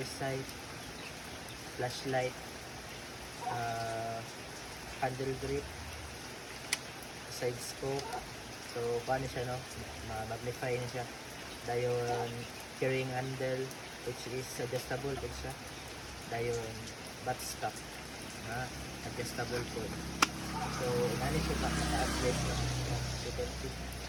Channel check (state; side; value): identical; both; correlation 1.00